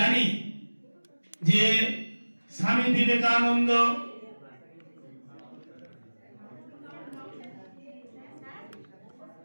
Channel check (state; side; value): inverted; both; correlation -1.00